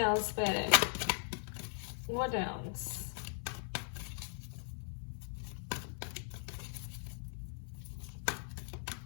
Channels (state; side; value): silent; right; 52 dB below the other